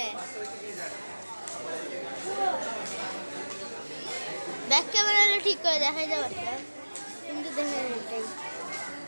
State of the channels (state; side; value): inverted; both; correlation -1.00